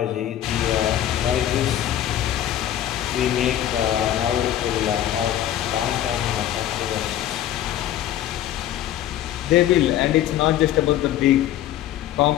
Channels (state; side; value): quieter; right; 12.0 dB